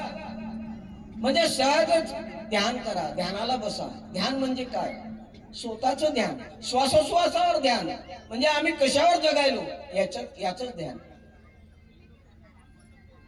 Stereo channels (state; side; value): identical; both; correlation 1.00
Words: म्हणजे सहजच ध्यान करा, ध्यानाला बसा। ध्यान म्हणजे काय? स्वतःचं ध्यान, श्वासोश्वासावर ध्यान। म्हणजे आम्ही कशावर जगायलो याच ध्यान।